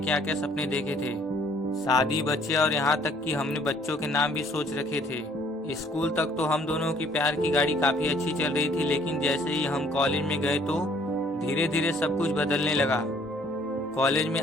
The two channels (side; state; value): both; normal; correlation 0.60